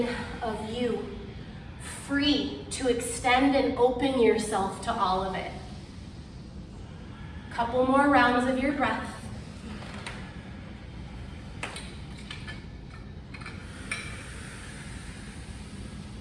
of you, free to extend and open yourself to all of it. Couple more rounds of your breath.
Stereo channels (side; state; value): both; identical; correlation 1.00